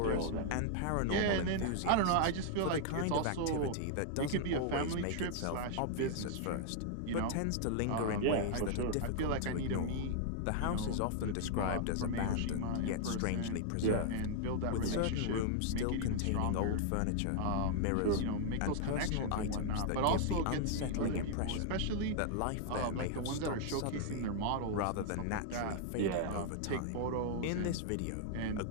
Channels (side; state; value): both; different; correlation -0.01